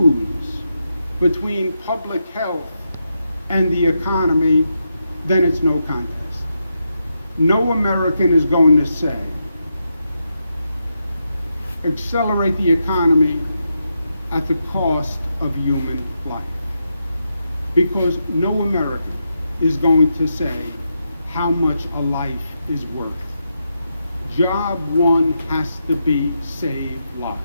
between public health and the economy, then it's no contest. No American is going to say, accelerate the economy at the cost of human life. Because no American is going to say how much a life is worth. Job one has to be save lives.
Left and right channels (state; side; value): inverted; both; correlation -0.84